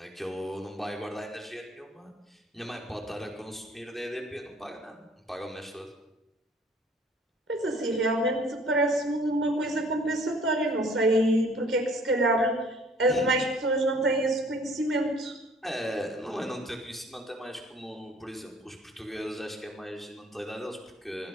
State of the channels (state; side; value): normal; both; correlation 0.55